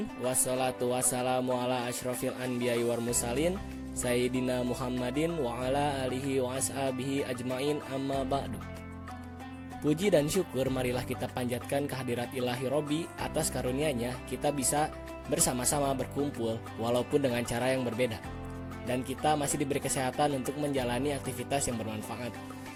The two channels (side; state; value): both; identical; correlation 1.00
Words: Wassalatu wassalamu ala asyrafil anbiya'i wal mursalin Sayyidina Muhammadin wa ala alihi wa ashabihi ajmain, amma ba'du. Puji dan syukur marilah kita panjatkan kehadirat Ilahi Robbi atas karunia-Nya kita bisa bersama-sama berkumpul walaupun dengan cara yang berbeda. Dan kita masih diberi kesehatan untuk menjalani aktivitas yang bermanfaat.